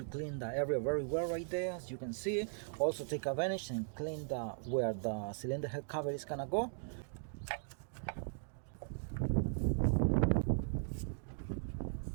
clean the area very well right there, as you can see. Also take advantage and clean where the cylinder head cover is gonna go.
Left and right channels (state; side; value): silent; left; digital silence